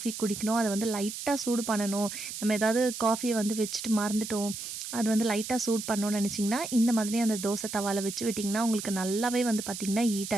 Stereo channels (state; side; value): noise; right; hiss, 8 dB below the sound